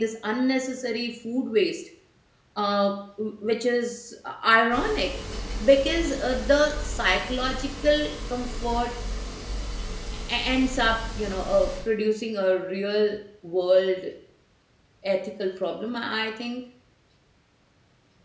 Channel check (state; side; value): identical; both; correlation 1.00